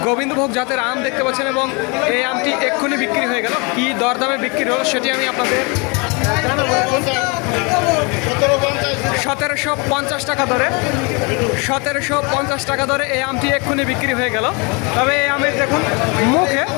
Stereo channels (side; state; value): right; quieter; 30.6 dB